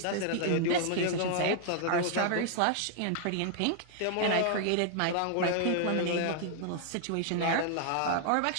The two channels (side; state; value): both; different; correlation 0.00